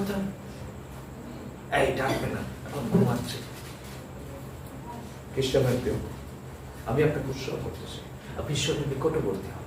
এই ডাকবে না, এখন ঘুমাচ্ছে। খ্রিস্টানের প্রিয়, আমি আপনাকে উৎসাহ করতেছি, আপনি ঈশ্বরের নিকটবর্তী হন,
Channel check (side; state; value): both; identical; correlation 1.00